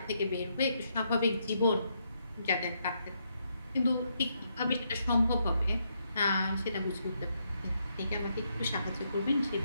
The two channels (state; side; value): inverted; both; correlation -0.78